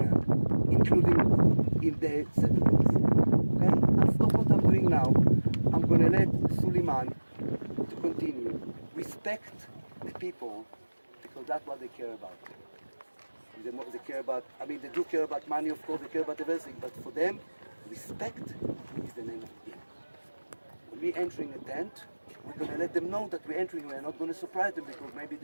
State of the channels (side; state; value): both; inverted; correlation -1.00